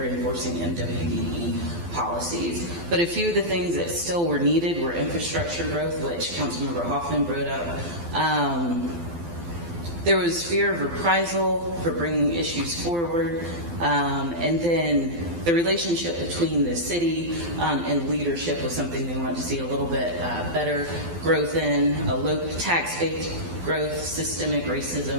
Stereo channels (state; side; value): late; left; 12 ms